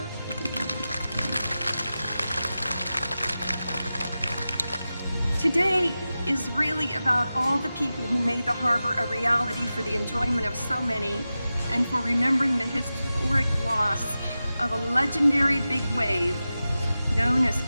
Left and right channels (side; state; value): both; inverted; correlation -0.94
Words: Today is really about all the people who made the harbor a reality for the enjoyment of so many, and for remembering the historic loss of a legendary big wave known as